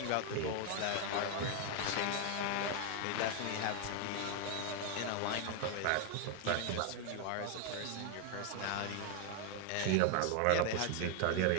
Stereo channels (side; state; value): both; different; correlation 0.00